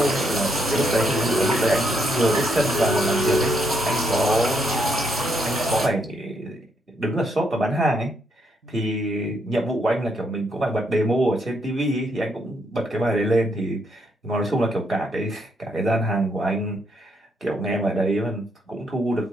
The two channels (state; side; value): normal; both; correlation 0.75